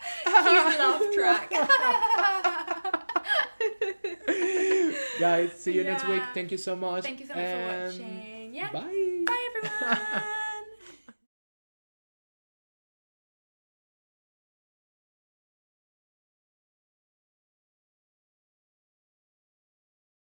Cute laugh track. Guys, see you next week. Thank you so much. Thank you so much for watching. Bye. Bye everyone.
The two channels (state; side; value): inverted; both; correlation -1.00